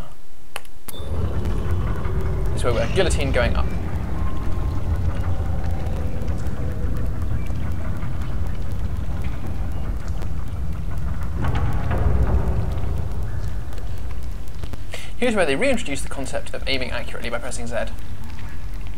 This is where we're guillotine going up. Here's where they reintroduce the concept of aiming accurately by pressing Z.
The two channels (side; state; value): both; identical; correlation 1.00